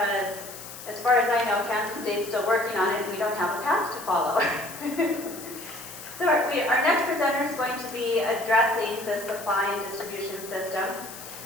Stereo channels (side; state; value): left; noise; hiss, 13 dB below the sound